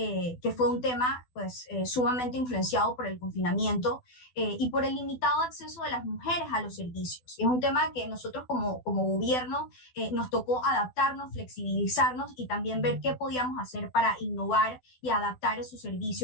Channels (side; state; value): right; late; 12 ms